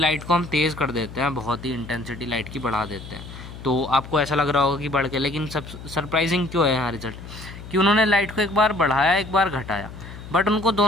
को हम तेज़ कर देते हैं, बहुत ही इंटेंसिटी लाइट की बढ़ा देते हैं। तो आपको ऐसा लग रहा होगा कि बढ़ के, लेकिन सब सरप्राइजिंग क्यों है यहाँ रिजल्ट, कि उन्होंने लाइट को एक बार बढ़ाया एक बार घटाया, बट उनको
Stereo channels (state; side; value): noise; left; hum, 13 dB below the sound